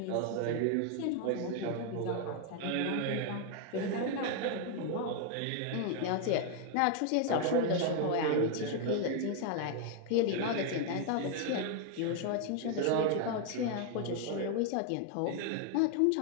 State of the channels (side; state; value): both; different; correlation 0.00